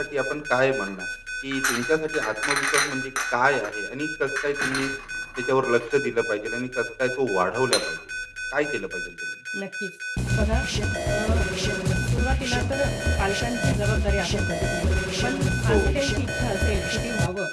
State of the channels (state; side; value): identical; both; correlation 1.00